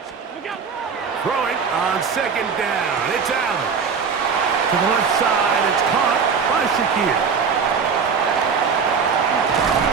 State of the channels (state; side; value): quieter; left; 5.9 dB